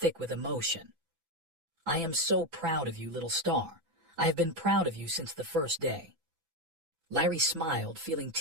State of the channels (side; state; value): left; late; 6.0 ms